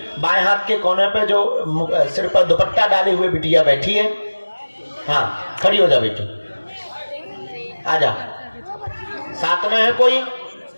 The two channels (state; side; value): inverted; both; correlation -1.00